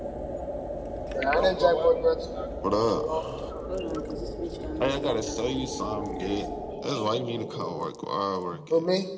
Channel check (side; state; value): both; identical; correlation 1.00